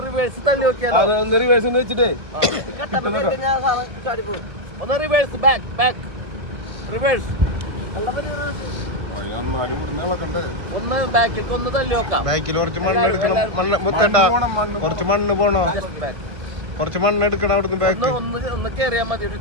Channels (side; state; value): left; late; 1.7 ms